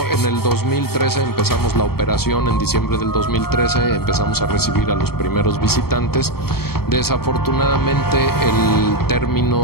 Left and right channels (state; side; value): late; right; 0.95 ms